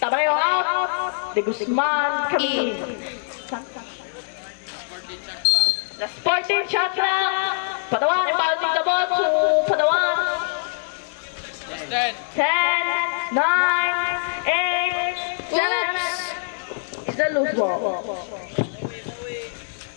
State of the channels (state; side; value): silent; right; digital silence